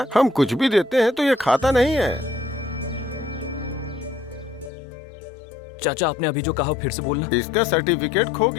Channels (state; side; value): drops out; right; at 4.7 s